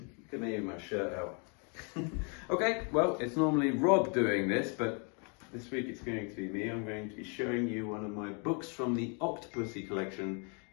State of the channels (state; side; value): quieter; right; 37.3 dB